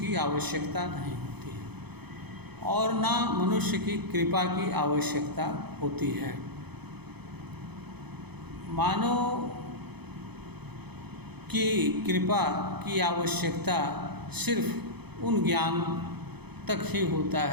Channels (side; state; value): left; late; 0.98 ms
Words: आवश्यकता नहीं होती है और ना मनुष्य की कृपा की आवश्यकता होती है। मानव की कृपा की आवश्यकता सिर्फ उन ज्ञान तक ही होता